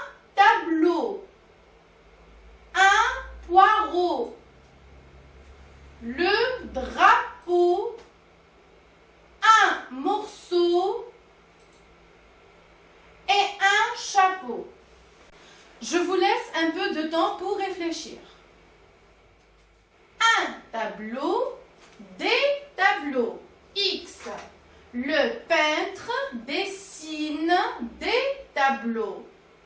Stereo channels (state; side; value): identical; both; correlation 1.00